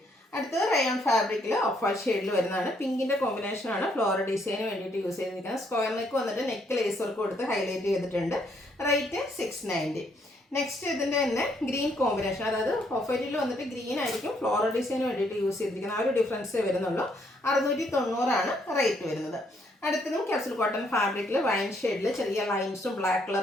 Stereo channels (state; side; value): normal; both; correlation 0.71